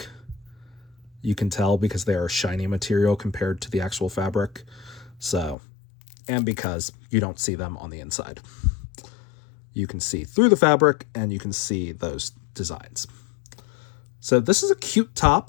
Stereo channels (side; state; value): right; drops out; at 5.6 s